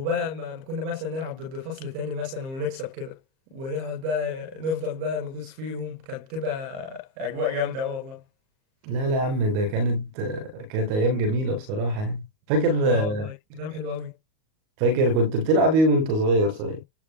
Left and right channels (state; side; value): late; left; 38 ms